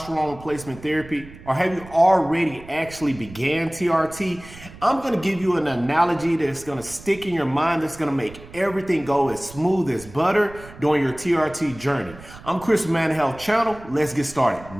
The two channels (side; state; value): right; noise; rumble, 18 dB below the sound